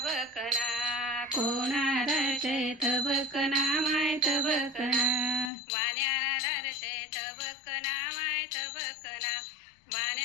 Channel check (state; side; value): drops out; right; at 5.5 s